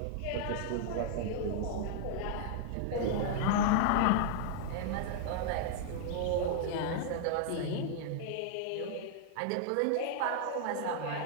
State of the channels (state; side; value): different; both; correlation -0.01